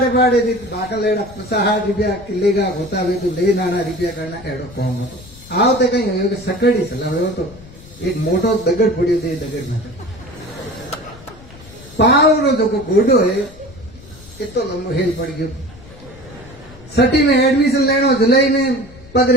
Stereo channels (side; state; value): left; noise; rumble, 20 dB below the sound